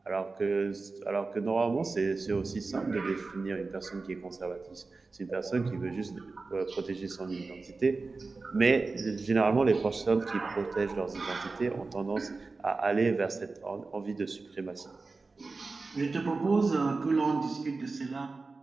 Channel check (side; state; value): left; quieter; 3.8 dB